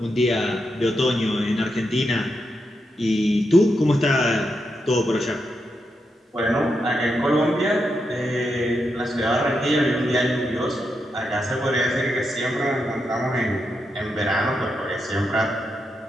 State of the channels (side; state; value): both; normal; correlation 0.84